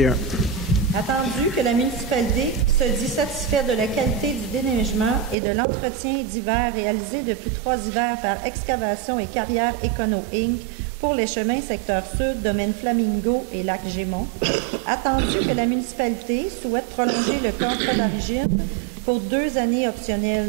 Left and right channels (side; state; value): left; drops out; at 5.4 s